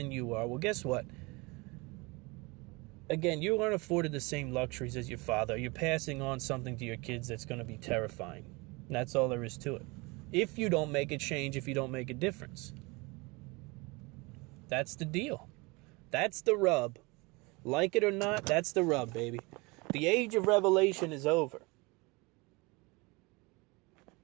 you are. Well, guess what? Again, you aren't afforded the same luxuries as your father. You're passing on something to your kids that's going to be terrifying. And that's all there is to it. If you don't make a change, if you don't make a difference. That's the deal. That's the rub. Like it or not, that's the rub, baby. The age of revelation is over.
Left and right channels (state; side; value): quieter; left; 26.1 dB